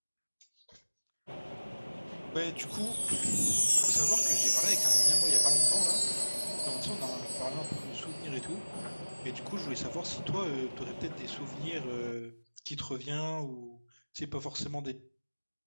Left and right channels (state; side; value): inverted; both; correlation -1.00